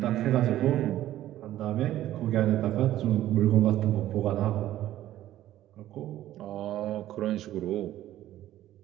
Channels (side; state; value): left; quieter; 13.5 dB